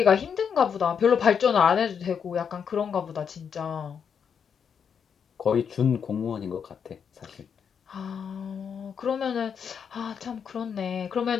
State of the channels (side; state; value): right; quieter; 7.1 dB